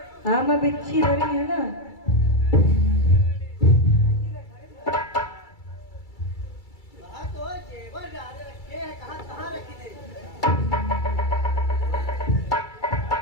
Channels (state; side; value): late; right; 2.3 ms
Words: हाँ मैं बिच्छी धरी है ना।